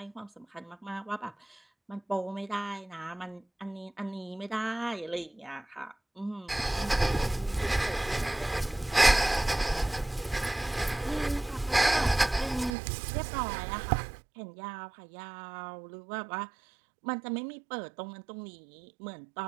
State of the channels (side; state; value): left; drops out; at 12.8 s